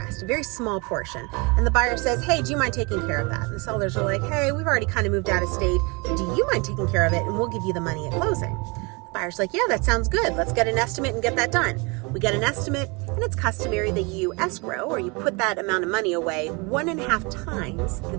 a very small portion. And the buyer says, hey, do you mind taking care of that? And the sellers are like, hey, we've already kind of moved out of state. Do you mind taking care of it? And we'll give you the money at closing. The buyer's like, yeah, that sounds good. Let's get an estimate and get that done. We get an estimate, and it's customary that you escrow, or you put that amount of money away 1.5 times the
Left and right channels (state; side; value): quieter; left; 29.0 dB